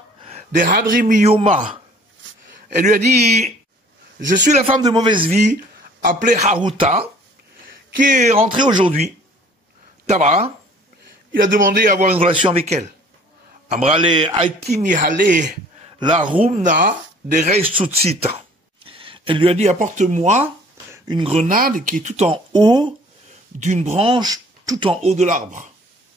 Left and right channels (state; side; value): normal; both; correlation 0.53